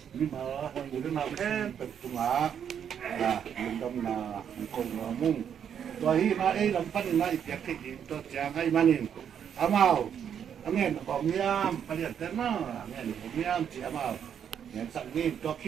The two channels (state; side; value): quieter; left; 8.4 dB